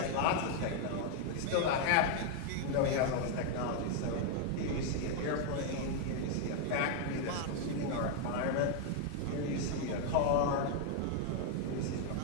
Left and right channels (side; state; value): both; different; correlation 0.00